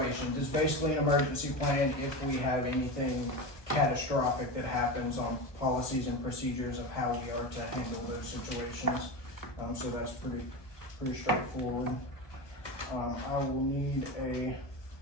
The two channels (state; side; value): late; right; 1.2 ms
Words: It's basically an emergency plan if we have anything catastrophic that happens on policies and procedures of how we are to handle those situations. So that's pretty straightforward. I will need a